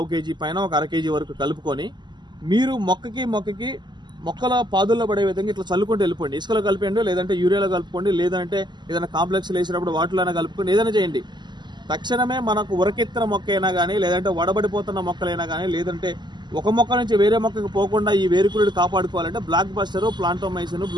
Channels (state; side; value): late; left; 0.21 ms